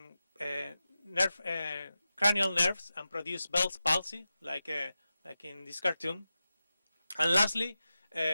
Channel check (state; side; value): inverted; both; correlation -0.93